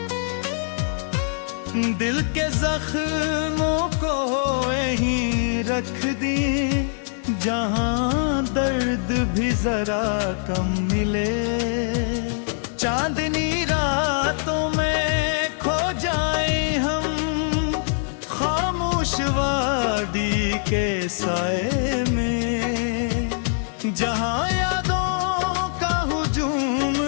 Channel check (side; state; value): right; silent; 61 dB below the other